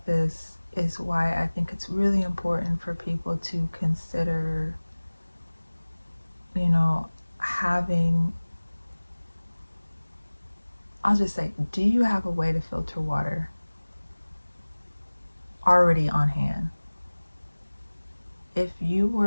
this is why I think it's really important for people to consider, you know, having, I'll just say, do you have a way to filter water already on hand? If you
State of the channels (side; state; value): both; inverted; correlation -1.00